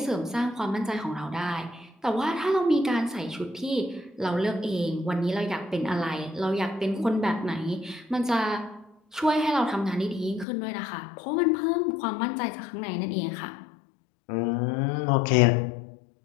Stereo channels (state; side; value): drops out; right; at 10.5 s